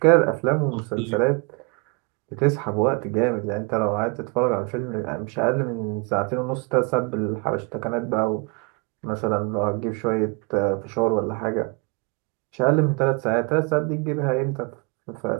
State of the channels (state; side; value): quieter; left; 32.5 dB